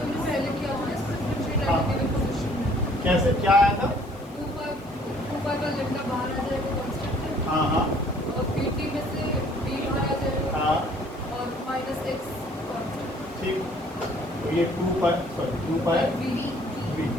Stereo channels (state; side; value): noise; left; hiss, 26 dB below the sound